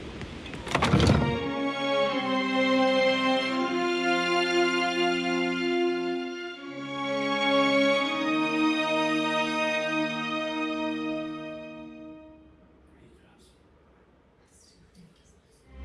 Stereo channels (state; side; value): identical; both; correlation 1.00